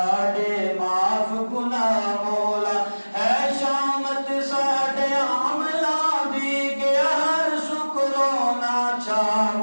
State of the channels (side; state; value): both; inverted; correlation -1.00